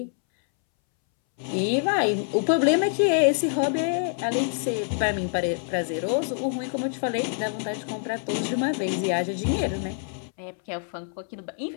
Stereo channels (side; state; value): right; silent; 61 dB below the other